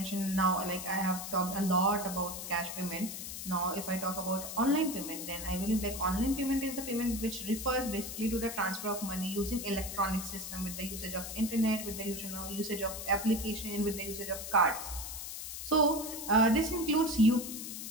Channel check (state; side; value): noise; left; hiss, 7 dB below the sound